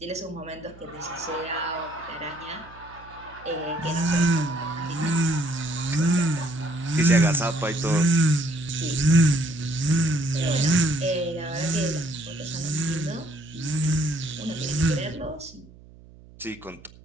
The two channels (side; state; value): right; noise; hum, 22 dB below the sound